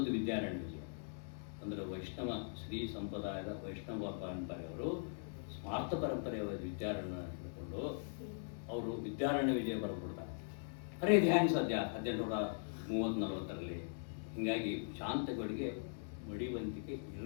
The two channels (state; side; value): silent; right; digital silence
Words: ವಿದ್ಯಾರಣ್ಯ ವಿಜಯ ಅಂದರೆ ವೈಷ್ಣವ ಶ್ರೀ ಸಂಪ್ರದಾಯದ ವೈಷ್ಣವ ಪರಂಪರೆಯವರು ಸ್ಮಾರ್ಥ ಪರಂಪರೆಯ ವಿದ್ಯಾರಣ್ಯ ಹಿಡ್ಕೊಂಡು ಅವರು ವಿದ್ಯಾರಣ್ಯ ವಿಜಯ ಬರೆದ್ಬಿಡ್ತಾರೆ. ಅರೆ ಇದು ಹ್ಯಾಂಗೆ ಸಾಧ್ಯ 1830-40ರಲ್ಲಿ? ಹೀಗಾಗಿ ಶಾಂತಗಳಿಗೆ ಮಡಿವಂತಿಕೆ